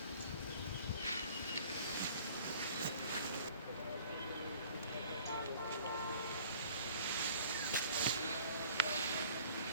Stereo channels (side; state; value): both; inverted; correlation -0.52